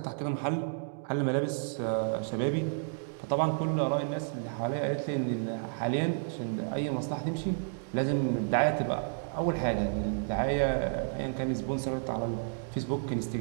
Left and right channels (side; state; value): left; silent; digital silence